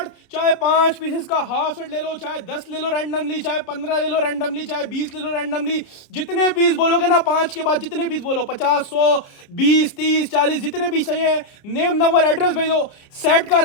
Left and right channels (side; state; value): right; late; 30 ms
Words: चाहे 5 पीसेस का हाफ सेट ले लो, चाहे 10 ले लो रैंडमली, चाहे 15 ले लो रैंडमली, चाहे 20 ले लो रैंडमली। जितने पीस बोलोगे ना 5 के बाद जितने पीस बोलो 50 100 20 30 40 जितने पीस चाहिए, नेम नंबर एड्रेस भेजो, सेट का